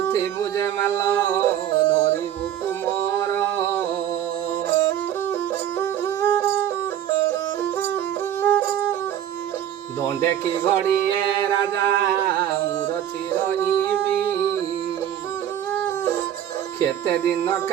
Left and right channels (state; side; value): quieter; left; 10.6 dB